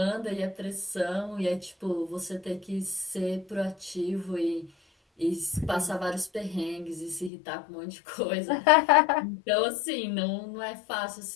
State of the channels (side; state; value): right; drops out; at 7.3 s